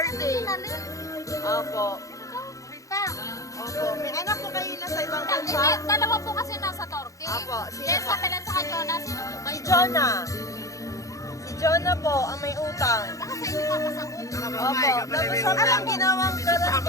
Opo. Rita. Opo. May anak po kayo na sa ibang bansa? Dalawa po kasi nasa Turkey. Apo. Yes, sa Pilan sa Jonah. Sino po ba Si yun? Jonah. Si Jonah po ang may utang. Baka sa inyo papasagot. Opo. Tapos siya po yung ginawang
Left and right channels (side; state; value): right; late; 0.16 ms